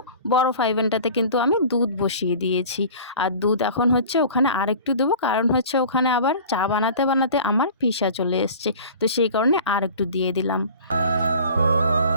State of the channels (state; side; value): inverted; both; correlation -0.42